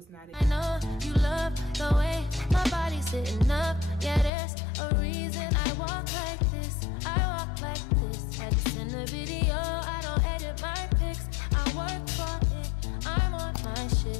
not it. I know you love the way my body's sitting up. Yeah, there's a reason I walk like this. I walk like this. Had to send a video. I don't edit my pics. I work for it. I'm on my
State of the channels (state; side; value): drops out; right; at 4.3 s